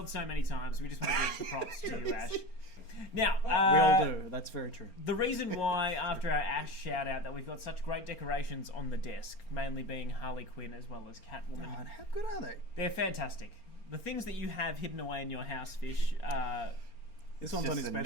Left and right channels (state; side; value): late; right; 4.3 ms